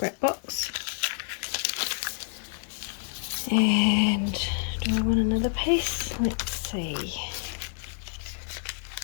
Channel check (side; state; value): right; silent; 59 dB below the other